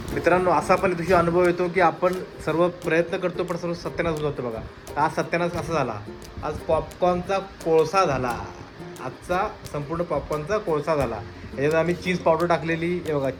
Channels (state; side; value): identical; both; correlation 1.00